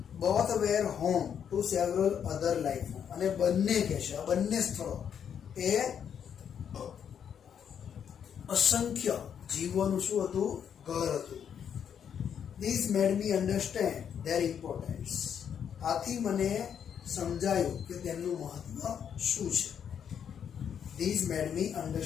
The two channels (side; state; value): right; quieter; 8.2 dB